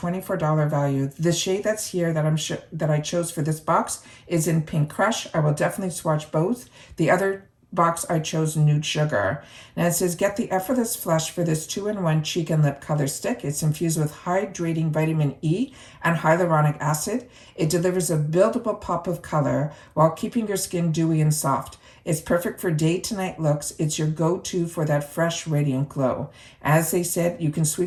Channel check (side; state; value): both; identical; correlation 1.00